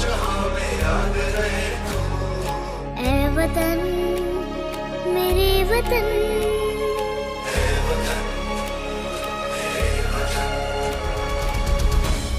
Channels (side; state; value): both; identical; correlation 1.00